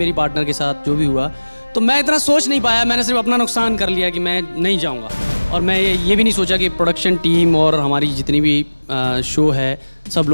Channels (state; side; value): inverted; both; correlation -1.00